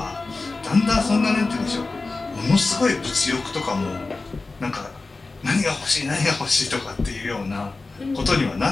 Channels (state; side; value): quieter; right; 3.6 dB